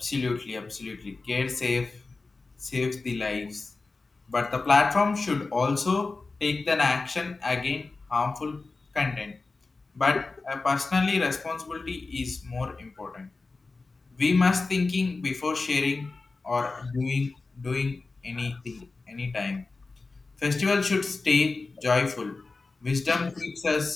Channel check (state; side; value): quieter; right; 3.8 dB